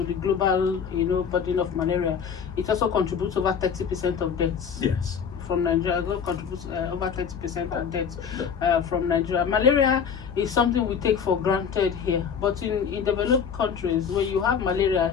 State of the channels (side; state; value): right; quieter; 7.0 dB